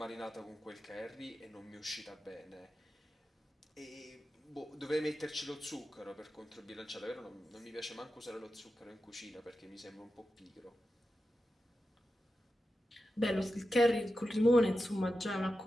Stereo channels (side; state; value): both; normal; correlation 0.91